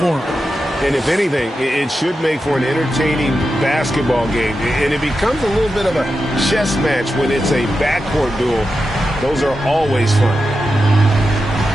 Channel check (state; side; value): normal; both; correlation 0.90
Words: them. And if anything, it should make for an entertaining basketball game. And it becomes a little bit of a chess match when it's a backcourt duel. Those are always fun.